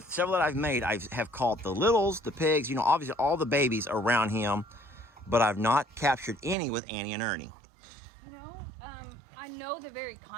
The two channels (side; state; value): left; drops out; at 6.6 s